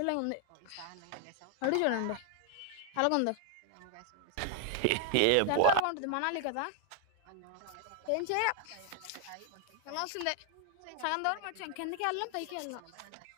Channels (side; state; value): both; different; correlation 0.00